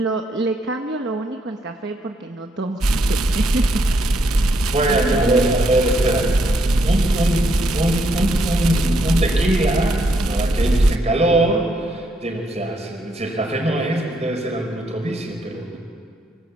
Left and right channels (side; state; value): both; normal; correlation 0.75